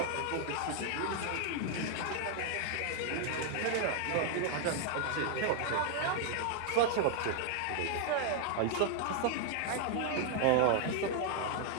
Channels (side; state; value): both; different; correlation 0.00